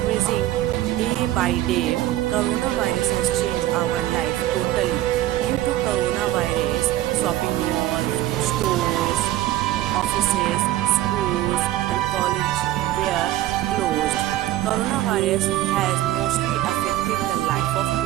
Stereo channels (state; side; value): quieter; left; 14.6 dB